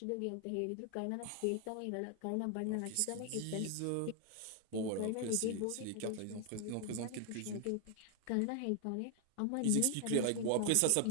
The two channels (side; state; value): both; different; correlation 0.00